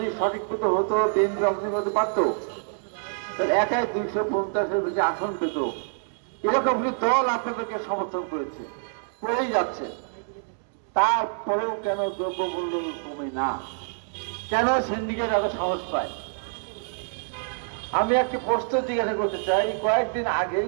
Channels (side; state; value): left; silent; digital silence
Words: সঠিক মতো হতো, বিএনপি অংশগ্রহণ করতে পারত, তাহলে একাই 250-এর বেশি আসন পেত। এরকম দল আপনাদেরকে সমর্থন করেছে, করেই যাচ্ছে। তারপরেও কেন দ্রব্যমূল্য কমে না? কেন সিন্ডিকেট এত সাহস পায়? আমি একটা প্রশ্ন জিজ্ঞাসা করতে চাই। কয়েকদিন আগেই